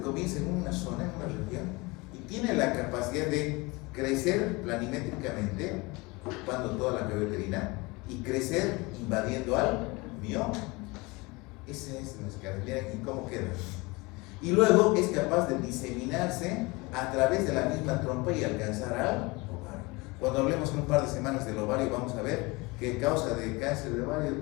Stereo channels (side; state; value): right; quieter; 24.6 dB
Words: comienza en una zona, en una región, y tiene la capacidad de crecer planimétricamente, ocupando toda la cavidad uterina, y crecer invadiendo al mioma. Ese es nuestra característica. ¿Y cómo queda? Y luego es capaz de diseminarse a través de la misma trompa y alcanzar al ovario. Cuando hablemos en un par de semanas del ovario, vamos a ver que causa de cáncer de ovario